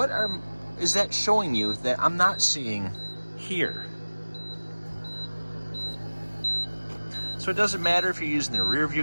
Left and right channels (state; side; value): inverted; both; correlation -1.00